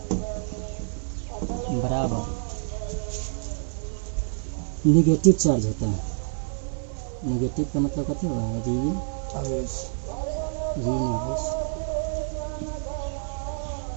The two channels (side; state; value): left; silent; digital silence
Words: के बराबर नेगेटिव चार्ज होता है। नेगेटिव का मतलब क्या होगा? ऋण आवेश।